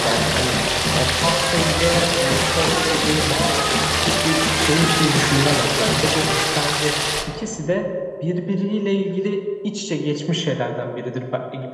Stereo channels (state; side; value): identical; both; correlation 1.00